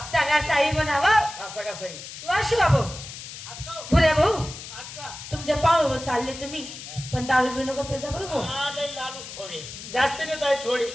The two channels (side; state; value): left; noise; hiss, 12 dB below the sound